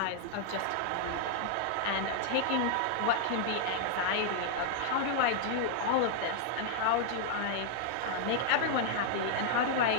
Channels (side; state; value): both; different; correlation -0.01